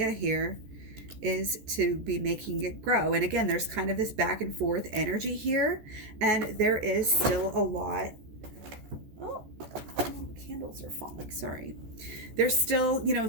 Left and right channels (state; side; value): late; left; 14 ms